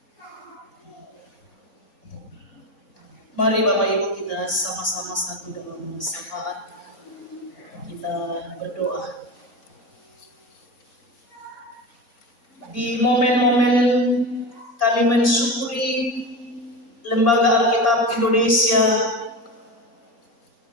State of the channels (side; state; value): right; late; 4.3 ms